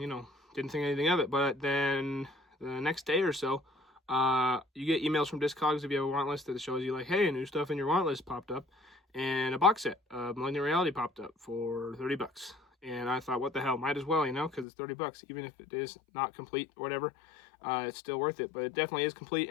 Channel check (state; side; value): drops out; right; at 14.7 s